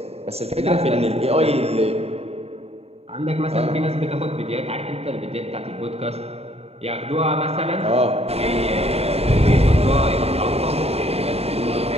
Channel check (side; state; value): left; late; 0.30 ms